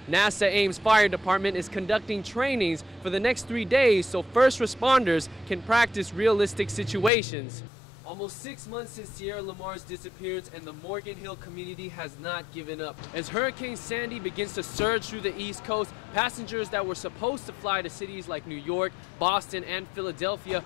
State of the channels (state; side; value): drops out; right; at 7.1 s